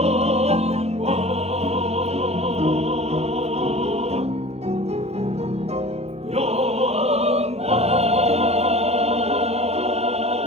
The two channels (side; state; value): left; late; 0.31 ms